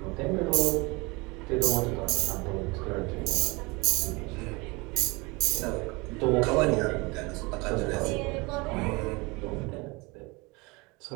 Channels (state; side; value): quieter; left; 25.7 dB